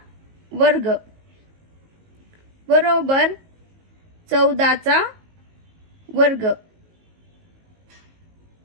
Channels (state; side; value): late; left; 19 ms